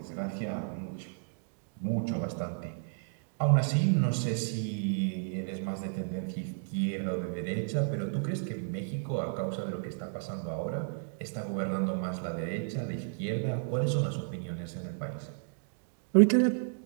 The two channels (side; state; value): left; silent; digital silence